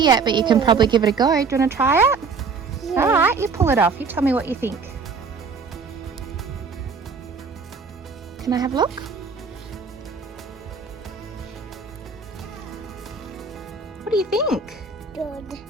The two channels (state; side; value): quieter; left; 5.0 dB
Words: but you can probably give it a go. Do you want to try it? All right, you pull it off. You tell me what you think. Can I have a look? What do you think?